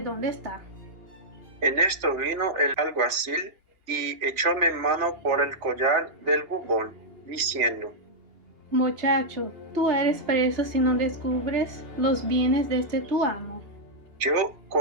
dónde está. En esto vino el alguacil y echóme mano por el collar del bubón, diciendo: Muchacho, tú eres preso si no descubres los bienes de este tu amo. Yo,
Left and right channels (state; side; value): late; left; 2.8 ms